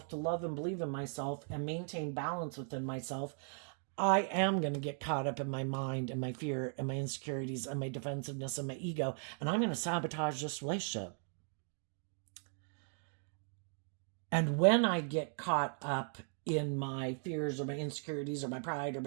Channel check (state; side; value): silent; left; 53 dB below the other